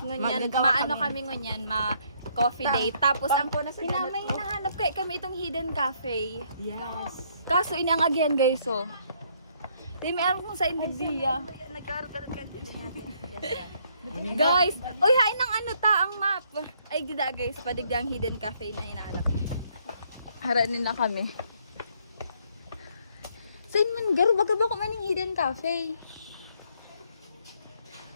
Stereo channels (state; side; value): inverted; both; correlation -0.68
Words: maano kami ngunyan, coffee date. Tapos ang may hinahanap kami itong hidden cafe. Yes. Kaso inangagyan guys, oh. Di may alam kung sa Indigdia. Guys, oy hain ng ano ta ang map. Ay gida guys, padigda ang hidden cafe na hinahanap niya. Haranin na kami. Saan man garo baga ba ko maning hidden cafe?